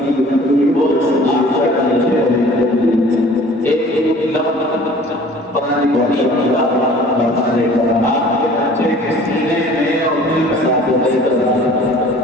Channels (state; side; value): normal; both; correlation 0.49